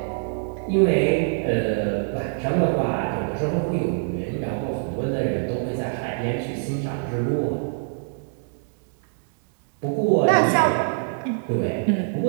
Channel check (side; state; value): left; silent; digital silence